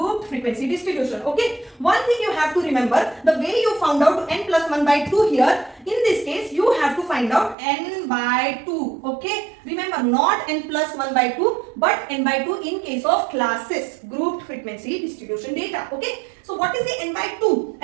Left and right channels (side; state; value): left; drops out; at 7.6 s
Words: frequency distribution. Okay, one thing you have to remember, the way you found out n plus 1 by 2 here, in this case you have to find out n by 2. Okay, remember, not n plus 1 by 2 but n by 2 in case of classes, grouped frequency distribution data. Okay, so what is the n by 2?